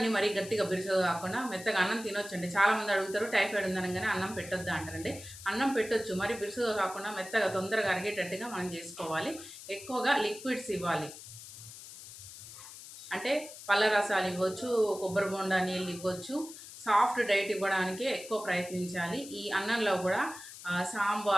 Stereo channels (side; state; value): left; noise; hiss, 14 dB below the sound